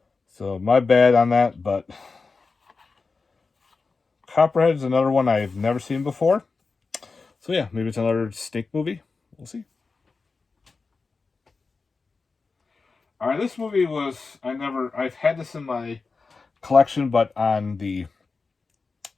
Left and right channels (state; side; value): quieter; right; 4.3 dB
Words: So my bad on that, but... Copperhead is another one I've never seen before. So yeah, maybe it's another snake movie. We'll see. Alright, this movie was... I've had this in my collection, but on the